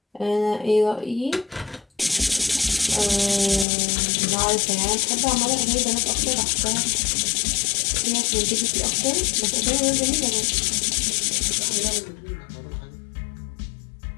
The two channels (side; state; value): right; drops out; at 3.7 s